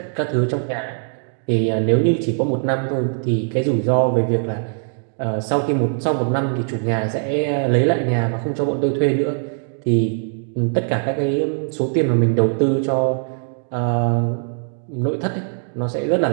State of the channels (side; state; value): left; silent; 65 dB below the other